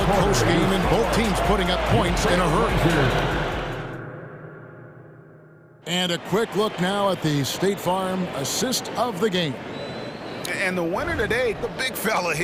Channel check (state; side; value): identical; both; correlation 1.00